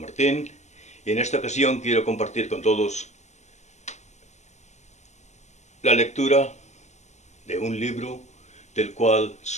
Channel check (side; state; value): right; late; 0.33 ms